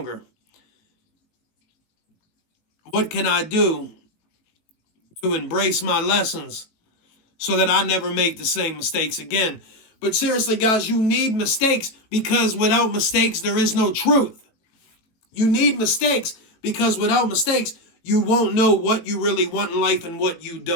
What can I do to embrace my lessons so that I never make the same mistakes again? But seriously, guys, you need mistakes because without mistakes, there is no truth. You need mistakes because without mistakes, you won't know what you really want in life and what you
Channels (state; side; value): late; right; 18 ms